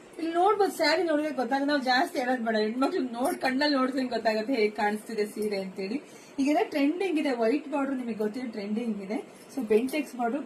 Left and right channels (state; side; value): identical; both; correlation 1.00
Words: ಇಲ್ಲಿ ನೋಡ್ಬೋದು, ಸ್ಯಾರಿ ನೋಡಿದ್ರೆ ಗೊತ್ತಾಗ ನಾವು ಜಾಸ್ತಿ ಹೇಳೋದ್ ಬೇಡ, ಹೆಣ್ಮಕ್ಳು ಕಣ್ಣಲ್ಲಿ ನೋಡಿದ್ರೆ ಗೊತ್ತಾಗುತ್ತೆ ಹೇಗೆ ಕಾಣಿಸ್ತಿದೆ ಸೀರೆ ಅಂತೇಳಿ. ಈಗೆಲ್ಲ ಟ್ರೆಂಡಿಂಗ್ ಇದೆ, ವೈಟ್ ಬಾರ್ಡರ್ ನಿಮಗೆ ಗೊತ್ತಿದೆ ಟ್ರೆಂಡಿಂಗ್ ಇದೆ. ಸೊ ಬೆಂಟೆಕ್ಸ್ ಬಾರ್ಡರ್